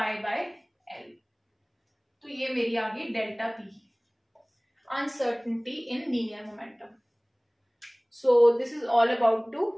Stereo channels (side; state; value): both; identical; correlation 1.00